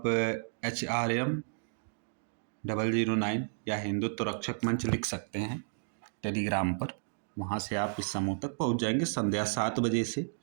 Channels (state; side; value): silent; left; digital silence